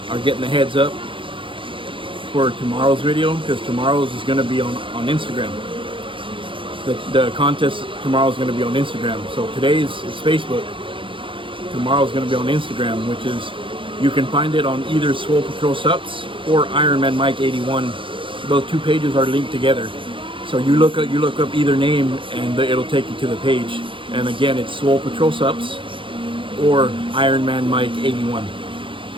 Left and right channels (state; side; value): late; left; 0.25 ms